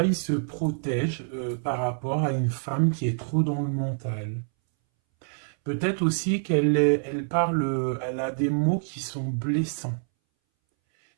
il se protège par rapport à une femme qui est trop dans le mental. Peut-être aussi elle parle, elle a des mots qui sont blessants.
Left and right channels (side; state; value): left; silent; 61 dB below the other